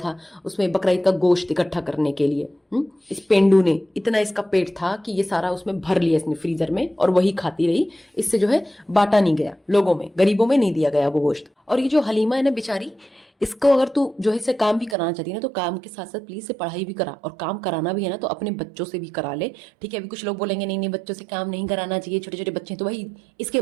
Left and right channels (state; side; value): drops out; left; at 15.0 s